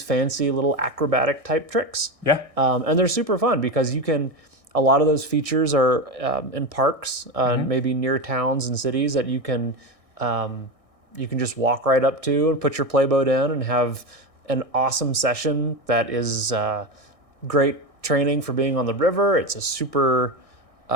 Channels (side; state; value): left; late; 1.6 ms